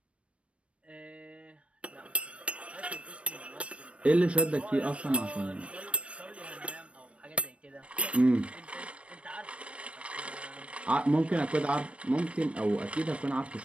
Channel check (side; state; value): left; late; 0.062 ms